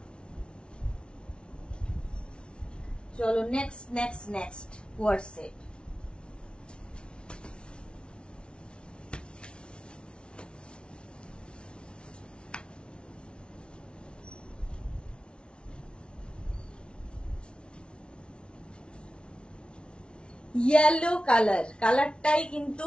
চলো next next next co-ord set. Yellow colour, কালারটাই কিন্তু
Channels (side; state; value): right; late; 0.057 ms